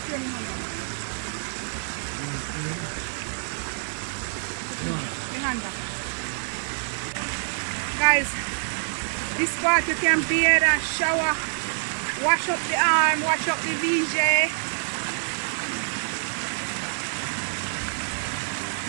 me hand back. Me hand back. Guys, this part you can bathe and shower, wash up the arm, wash up the VJ.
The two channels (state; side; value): silent; left; digital silence